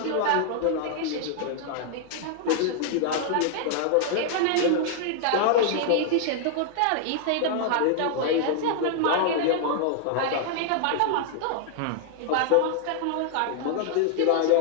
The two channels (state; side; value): different; both; correlation -0.01